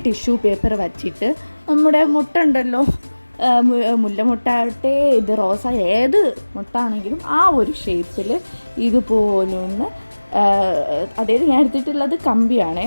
ടിഷ്യൂ പേപ്പർ വച്ചിട്ട് നമ്മുടെ മുട്ട ഉണ്ടല്ലോ, മുല്ലമുട്ടാവട്ടെ ഇത് റോസ ഏത് മുട്ടാണെങ്കിലും ആ ഒരു ഷേപ്പിൽ ഇതുപോലൊന്ന്, അതായത് ഞാൻ എടുത്തിട്ടുള്ളത് കമ്പിയാണേ,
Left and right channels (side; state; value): both; inverted; correlation -1.00